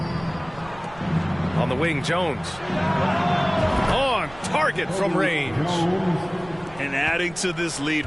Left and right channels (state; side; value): noise; right; rumble, 20 dB below the sound